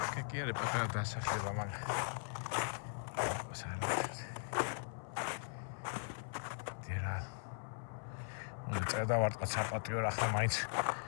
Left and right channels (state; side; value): silent; right; 51 dB below the other